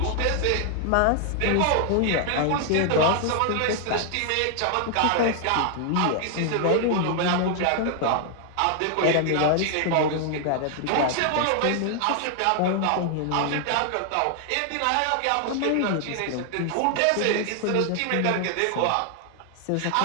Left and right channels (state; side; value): different; both; correlation 0.00